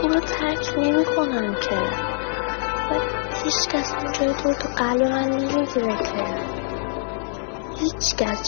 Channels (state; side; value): silent; right; digital silence